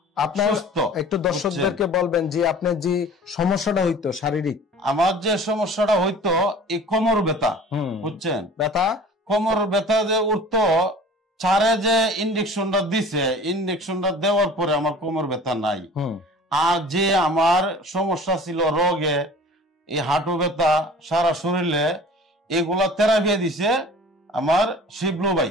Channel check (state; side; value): normal; both; correlation 0.44